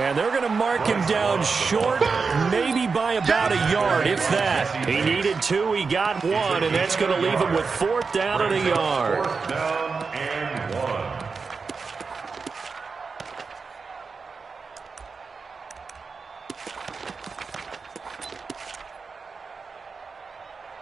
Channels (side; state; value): left; quieter; 4.8 dB